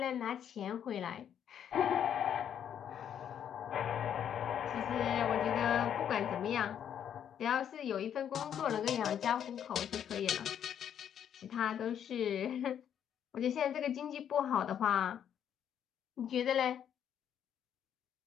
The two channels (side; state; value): right; quieter; 9.2 dB